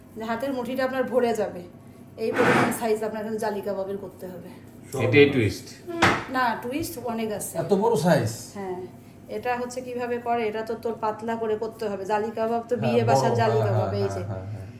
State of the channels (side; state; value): both; identical; correlation 1.00